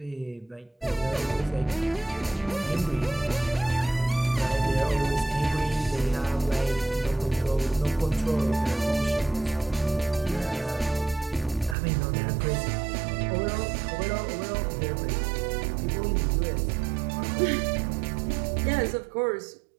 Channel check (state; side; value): drops out; left; at 11.8 s